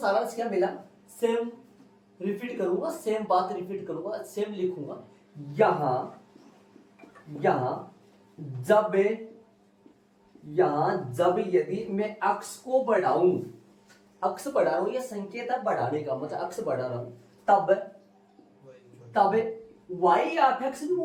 क्या मिला, सेम रिपीट करूंगा, सेम बात रिपीट करूंगा, सेम लिखूंगा। यहां जब यदि मैं x को बढ़ाऊं, x बढ़ा रहा हूं, ये संकेत है बढ़ाने का, मतलब x बढ़ा रहा हूं, तब y या fx भी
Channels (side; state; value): both; identical; correlation 1.00